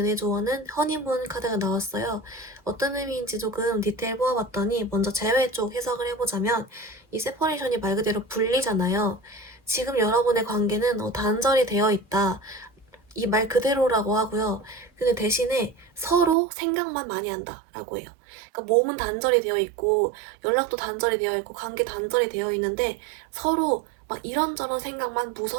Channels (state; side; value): drops out; left; at 16.4 s